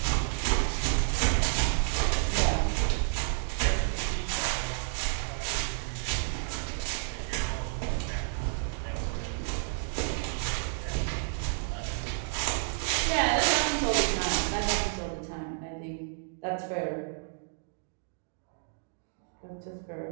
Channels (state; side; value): silent; left; digital silence